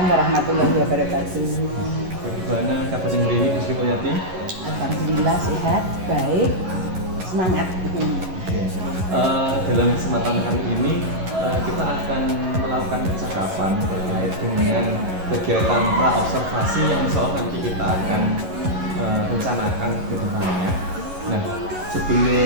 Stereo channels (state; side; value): late; left; 11 ms